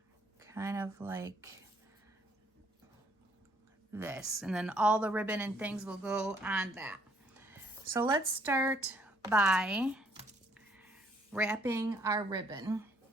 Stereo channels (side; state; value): both; normal; correlation 0.65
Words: Kind of like this. And then all the ribbon and things will go on that. So let's start by wrapping our ribbon.